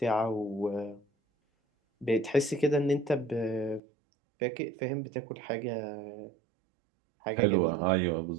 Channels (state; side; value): drops out; left; at 3.8 s